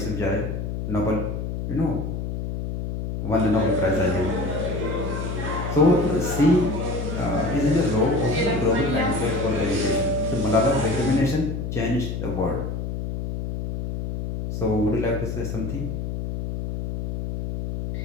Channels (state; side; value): noise; left; hum, 4 dB below the sound